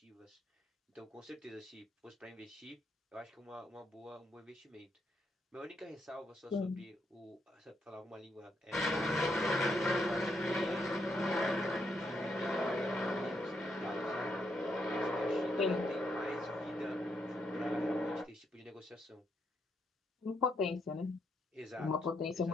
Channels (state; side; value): normal; both; correlation 0.78